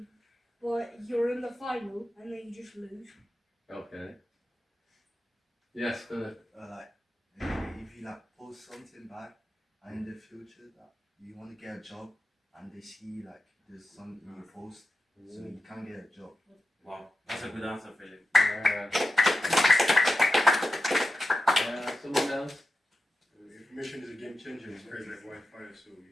but you're in the final and then you just lose. Okay. Yes, good. If you post something back and in the future that you want to get a job and they see there's something you post, so you can't get a job. Wow, that's a good answer, Philip. Someone else? Information is a game changer. It's crazy like Wi-Fi, so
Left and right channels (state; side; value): normal; both; correlation 0.90